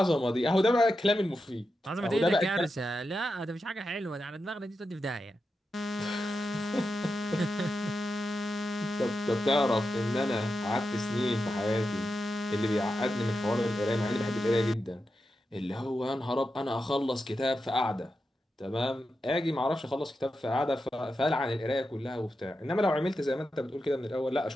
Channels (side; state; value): both; normal; correlation 0.89